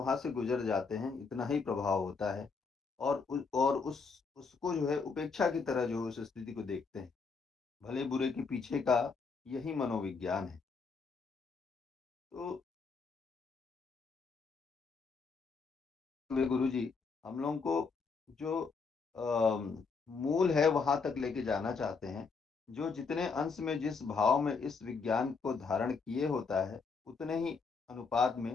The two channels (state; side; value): quieter; right; 4.9 dB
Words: से गुज़र जाते हैं, इतना ही प्रभाव होता है और उसको जो है उपेक्षा की तरह जो उस स्थिति को देखते हैं। भले-बुरे के पीछे का यही मनोविज्ञान है। तो वे गुरुजी हम लोगों को जो मूल है वहाँ तक लेके जाना चाहते हैं। जो जितने अंश में जिस भाव में इस विज्ञान को धारण किए होता है, उतने ही अनुपात